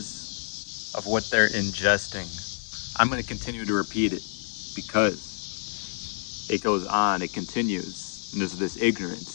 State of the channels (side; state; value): right; silent; 57 dB below the other